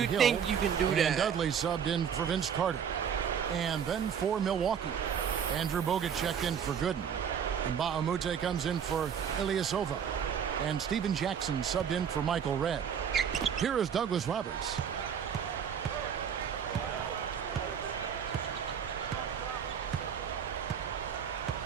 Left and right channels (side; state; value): left; quieter; 7.8 dB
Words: you Hill, think you can do and that? Dudley subbed in for Vince Carter. And then for Milwaukee, Andrew Bogut checked in for Gooden. And Bahamute comes in for Ilyasova. And Steven Jackson subbed in for Michael Redd. Here is Douglas Roberts.